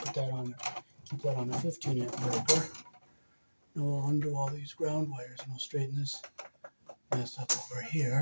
put that on, keep that on a 15-amp breaker. Now we'll undo all these ground wires and we'll straighten this mess up over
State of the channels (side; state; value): both; inverted; correlation -1.00